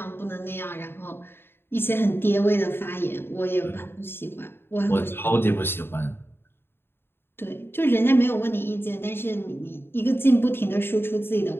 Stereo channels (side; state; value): right; late; 0.11 ms